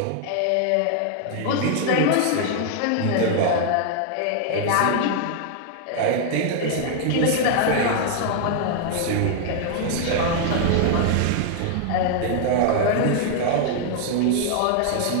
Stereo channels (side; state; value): both; different; correlation 0.00